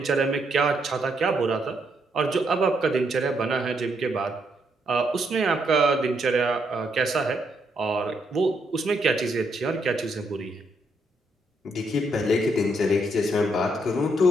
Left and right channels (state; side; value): normal; both; correlation 0.76